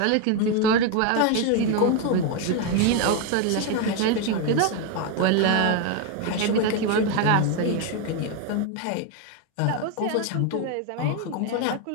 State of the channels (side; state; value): both; different; correlation 0.01